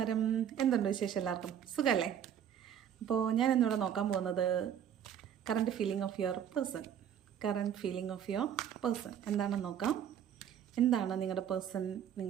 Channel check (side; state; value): left; quieter; 9.3 dB